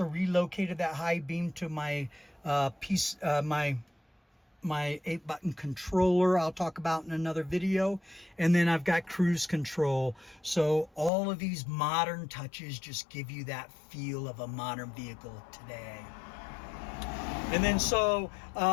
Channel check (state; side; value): drops out; right; at 11.1 s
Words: relocated that high beam to my my 8-button controller I'll talk about in another video. And then I've got cruise control. So all of these modern touches just give you that feel of a modern vehicle today. And then so